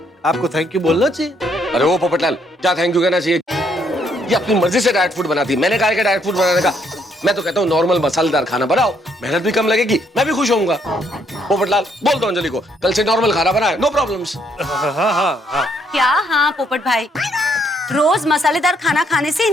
आपको थैंक यू बोलना चाहिए। अरे वो पोपटलाल, क्या थैंक यू कहना चाहिए? ये अपनी मर्जी से डाइट फूड बनाती है, मैंने कहा कि डाइट फूड बनाने का। मैं तो कहता हूँ नॉर्मल मसालेदार खाना बनाओ, मेहनत भी कम लगेगी, मैं भी खुश होऊंगा। पोपटलाल, बोल दो अंजलि को कल से नॉर्मल खाना बनाए, नो प्रॉब्लम्स। हाँ। क्या हाँ पोपट भाई, रोज मसालेदार खाना खाने से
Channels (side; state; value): both; normal; correlation 0.70